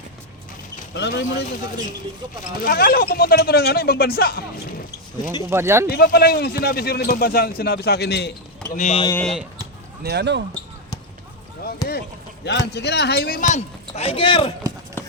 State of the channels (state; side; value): normal; both; correlation 0.02